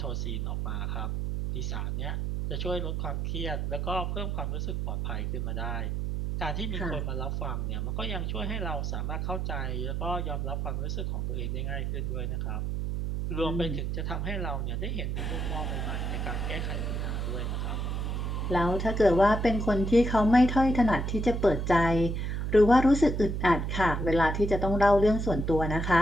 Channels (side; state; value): right; noise; hum, 1 dB below the sound